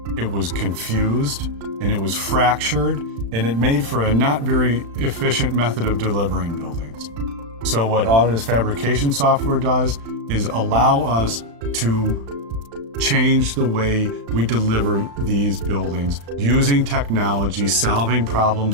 it was confused, and it was fractured, and it made for a not very efficient method of delivering buildings. So what Autodesk Fabrication software does is allow us to change the way we deliver these buildings using technology, solving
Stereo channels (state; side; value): late; left; 35 ms